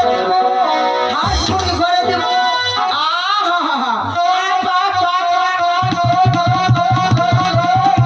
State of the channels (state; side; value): identical; both; correlation 1.00